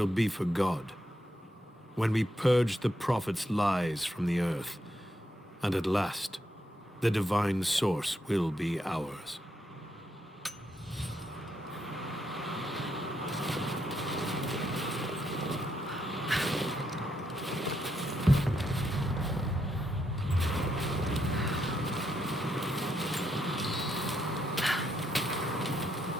be for God, when we purge the Prophet's lies from the earth, and at last, the divine source will be ours.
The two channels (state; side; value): normal; both; correlation 0.79